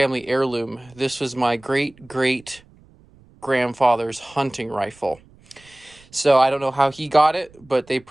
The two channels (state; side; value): noise; right; rumble, 27 dB below the sound